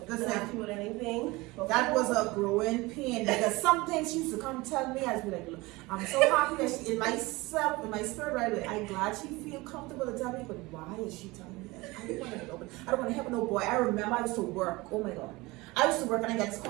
with anything. That was a growing pain because some things she used to come tell me. I'd be like, look, I'm so happy that she, in my spirit, right away, I'm glad she feel comfortable to tell me, but why is she telling me that? I don't want to help no boy. I remember I used to work. Oh my God. I used to work and I got this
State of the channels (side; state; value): left; quieter; 22.1 dB